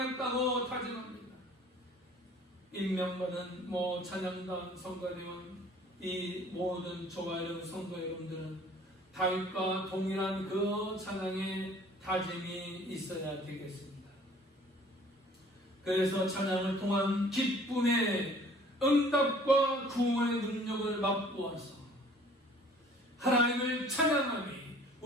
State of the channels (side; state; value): both; normal; correlation 0.52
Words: 다짐합니다. 임명받은 찬양단 성가대원, 이 모든 저와 여러분 성도 여러분들은 다윗과 동일한 그 찬양의 다짐이 있어야 되겠습니다. 그래서 찬양을 통한 기쁨의 응답과 구원의 능력을 맛보아서 하나님을 찬양함이